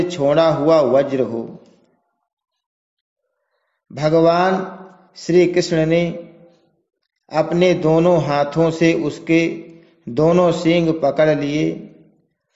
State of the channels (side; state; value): both; identical; correlation 1.00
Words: छोड़ा हुआ वज्र हो। भगवान श्री कृष्ण ने अपने दोनों हाथों से उसके दोनों सींग पकड़ लिए